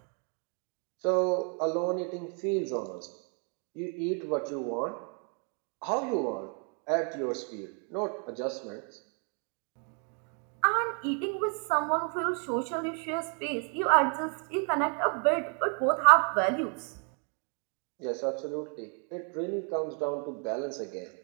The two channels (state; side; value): quieter; left; 39.6 dB